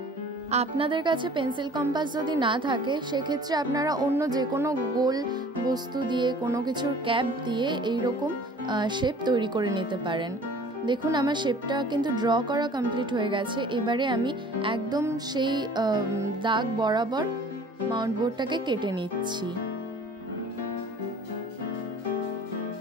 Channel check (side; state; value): both; normal; correlation 0.48